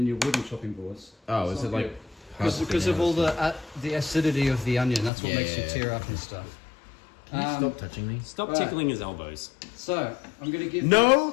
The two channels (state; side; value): drops out; right; at 5.1 s